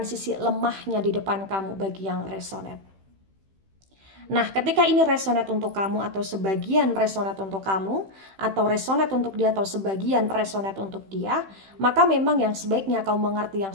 sisi lemahnya di depan kamu bagi yang resonate. Nah, ketika ini resonate untuk kamu atau sebagian resonate untuk kamu, atau resonate untuk dia atau sebagian resonate untuk dia, maka memang yang sebaiknya kamu mengerti, yang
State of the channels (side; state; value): left; late; 15 ms